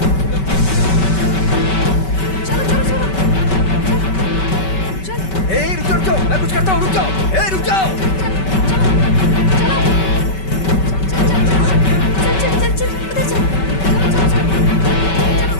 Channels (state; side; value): late; right; 5.2 ms